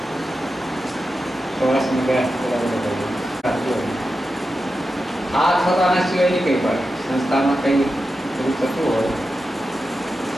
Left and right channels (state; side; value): normal; both; correlation 0.90